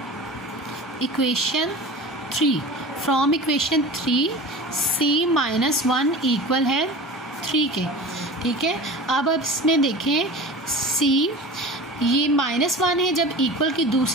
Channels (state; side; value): normal; both; correlation 0.36